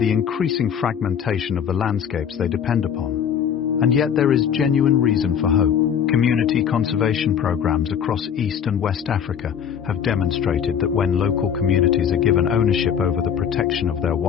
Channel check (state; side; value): quieter; right; 8.1 dB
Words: increasing fragmentation of the landscapes they depend upon. And yet there is genuine reason for hope. Community conservation programs across East and West Africa have demonstrated that when local communities are given ownership over the protection of their